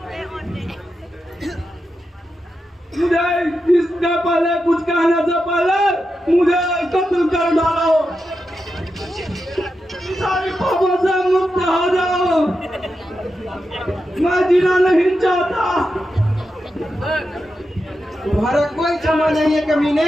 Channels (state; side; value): normal; both; correlation 0.88